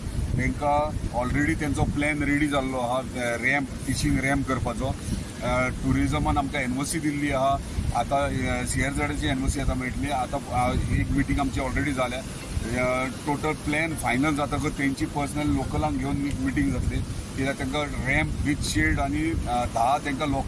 तांकां ऑलरेडी तेंचो प्लॅन रेडी जाल्लो आहा रॅम्प, फिशींग रॅम्प करपाचो। टुरिजमान आमकां एनओसी दिल्ली आहा, आतां CRZची एनओसी आतां मेळटली। आतां एक मिटींग आमची ऑलरेडी जाल्या, टोटल प्लॅन फायनल जातकच तेंची पर्सनल लोकलांक घेवन एक मिटींग जातली, कित्याक तांकां रॅम्प विथ शेड आनी 10 तांकां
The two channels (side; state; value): both; identical; correlation 1.00